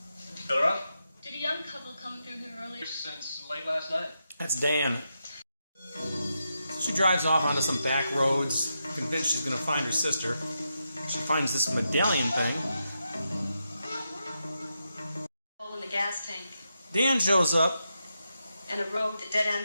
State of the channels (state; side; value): inverted; both; correlation -0.86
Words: Fill her up? Did a young couple come through here earlier? Since late last night. That's Dan. She drives off onto some back roads, convinced she's going to find her sister. She finds this medallion thing. Hole in the gas tank. Dan shows up And a road that dead